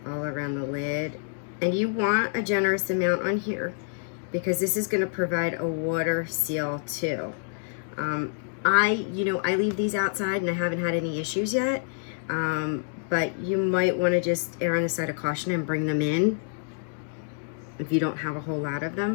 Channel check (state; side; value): silent; right; digital silence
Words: All around the lid. And you want a generous amount on here, because this is going to provide a water seal too. I leave these outside and I haven't had any issues yet. But you might want to just err on the side of caution and bring them in if you don't have a whole lot of